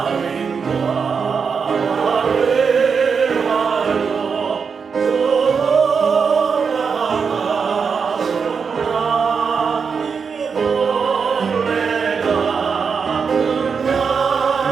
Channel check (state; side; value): quieter; left; 5.8 dB